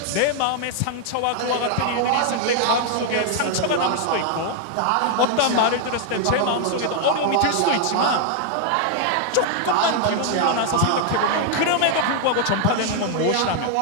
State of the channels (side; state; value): both; different; correlation 0.00